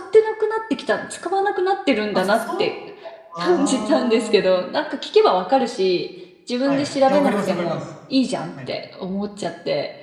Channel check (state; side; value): identical; both; correlation 1.00